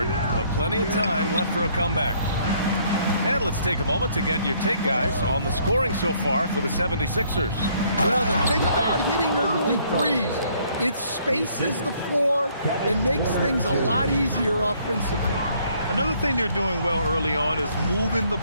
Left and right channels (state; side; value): inverted; both; correlation -0.65